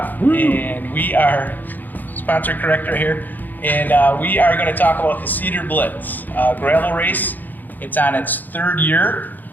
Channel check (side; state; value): right; late; 0.086 ms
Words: and we are sponsor correct right here, and we are going to talk about the Cedar Blitz gravel race. It's on its third year,